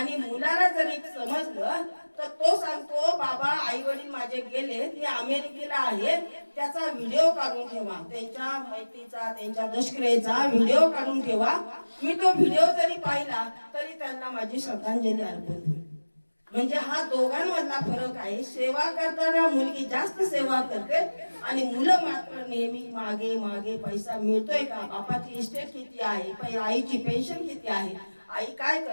मुलाला जर एक समजलं तर तो सांगतो बाबा आई वडील माझे गेले ते अमेरिकेला आहेत, त्याचा व्हिडिओ काढून ठेवा, त्यांच्या मैत्रीचा त्यांच्या दशक्रियेचा व्हिडिओ काढून ठेवा, मी तो व्हिडिओ जरी पाहिला तरी त्यांना माझी श्रद्धांजली अर्पण होईल. म्हणजे हा दोघांमधला फरक आहे. सेवा करताना मुलगी जास्त सेवा करते आणि मुलं मात्र नेहमी मागे मागे पैसा मिळतोय का, बापाची इस्टेट किती आहे, आईची पेन्शन किती आहे, आई काय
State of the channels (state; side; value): inverted; both; correlation -1.00